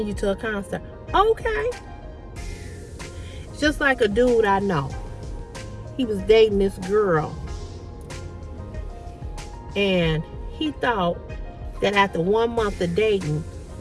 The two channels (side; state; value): both; identical; correlation 1.00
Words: you to a concert. Okay. It's just like a dude I know. He was dating this girl. And he thought that after 1 month of dating,